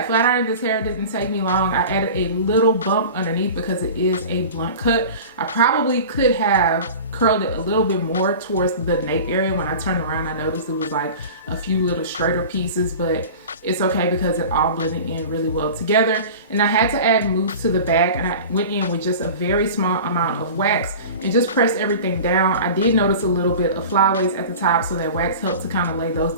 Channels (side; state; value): both; inverted; correlation -0.36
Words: flat iron this hair didn't take me long. I added a little bump underneath because it is a blunt cut. I probably could have curled it a little bit more towards the nape area. When I turned around, I noticed it was like a few little straighter pieces, but it's okay because it all blended in really well together. And I had to add mousse to the back, and I went in with just a very small amount of wax and just pressed everything down. I did notice a little bit of flyaways at the top, so that wax helped to kind of lay those